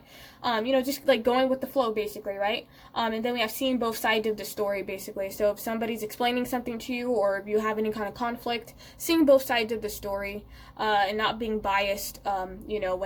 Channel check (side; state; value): both; identical; correlation 1.00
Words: you know, just like going with the flow, basically, right? And then we have seeing both sides of the story, basically. So if somebody's explaining something to you, or if you have any kind of conflict, seeing both sides of the story, and not being biased, you know,